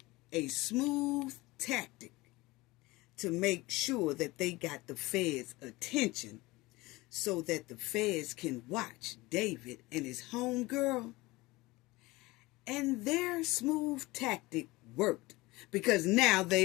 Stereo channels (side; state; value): right; quieter; 21.1 dB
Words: a smooth tactic to make sure that they got the feds' attention so that the feds can watch David and his homegirl. And their smooth tactic worked because now